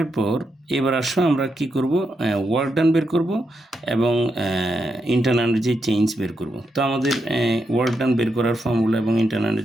পর এবার আসো আমরা কি করব? ওয়ার্ক ডান বের করব এবং ইন্টারনাল এনার্জি চেঞ্জ বের করব। তো আমাদের ওয়ার্ক ডান বের করার ফর্মুলা এবং ইন্টারনাল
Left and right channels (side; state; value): both; normal; correlation 0.84